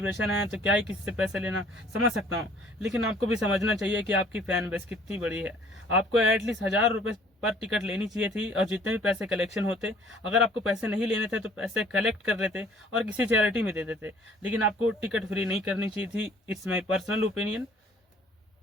है तो क्या ही किसी से पैसे लेना, समझ सकता हूँ। लेकिन आपको भी समझना चाहिए कि आपकी फैन बेस कितनी बड़ी है। आपको एटलीस्ट 1,000 रुपये पर टिकट लेनी चाहिए थी, और जितने भी पैसे कलेक्शन होते, अगर आपको पैसे नहीं लेने थे तो पैसे कलेक्ट कर लेते और किसी चैरिटी में दे देते। लेकिन आपको टिकट फ्री नहीं करनी चाहिए थी। It's my personal opinion,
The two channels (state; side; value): normal; both; correlation 0.56